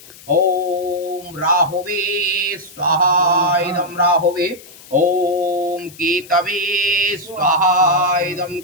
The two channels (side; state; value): left; noise; hiss, 20 dB below the sound